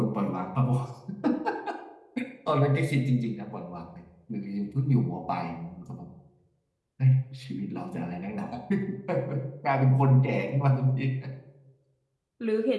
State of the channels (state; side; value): identical; both; correlation 1.00